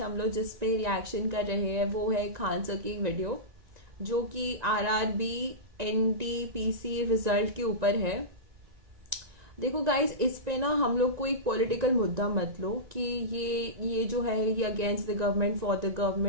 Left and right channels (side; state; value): left; late; 1.9 ms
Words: हम लोग जिस पे रिएक्शन कर रहे हैं वो है खान सर की वीडियो, जो कि आरआरबी एनटीपीसी रिजल्ट के ऊपर है। देखो गाइस, इस पे ना हम लोग को एक पॉलिटिकल मुद्दा मत लो कि ये जो है ये against the government for the